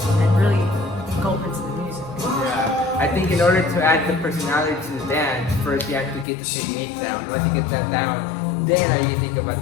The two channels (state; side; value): drops out; right; at 6.2 s